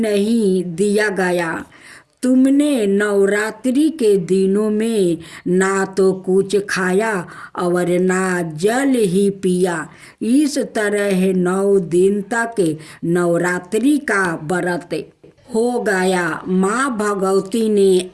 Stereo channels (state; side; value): identical; both; correlation 1.00